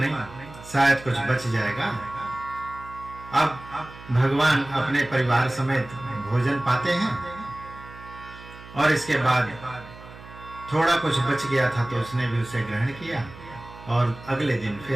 शायद कुछ बच जाएगा। अब भगवान अपने परिवार समेत भोजन पाते हैं। और इसके बाद थोड़ा कुछ बच गया था तो उसने भी उसे ग्रहण किया और अगले दिन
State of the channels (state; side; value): noise; right; hum, 17 dB below the sound